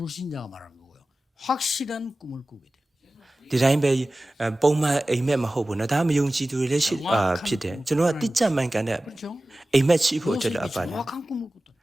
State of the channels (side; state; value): both; normal; correlation 0.96